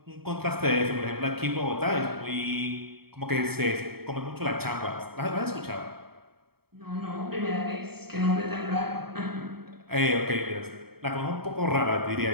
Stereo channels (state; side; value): late; left; 0.96 ms